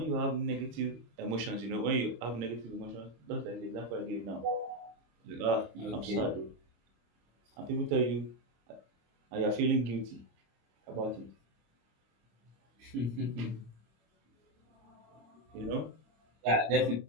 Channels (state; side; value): late; left; 26 ms